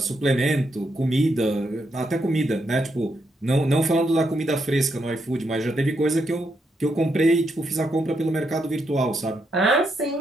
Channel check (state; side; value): normal; both; correlation 0.80